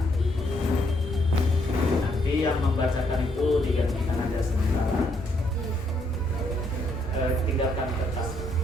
Nanti yang membacakan itu digantikan aja sementara. Tinggalkan kertas.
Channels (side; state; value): left; noise; rumble, 13 dB below the sound